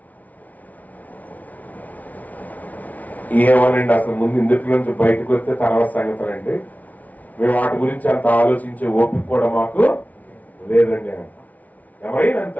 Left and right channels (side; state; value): right; late; 0.073 ms